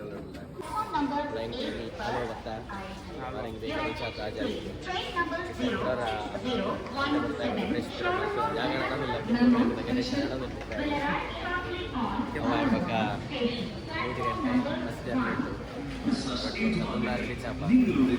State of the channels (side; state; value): both; identical; correlation 1.00